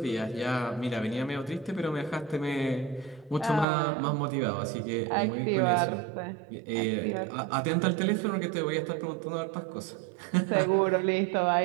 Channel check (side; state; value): left; drops out; at 3.7 s